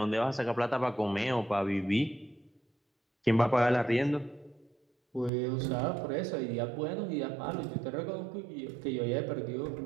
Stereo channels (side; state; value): left; drops out; at 5.3 s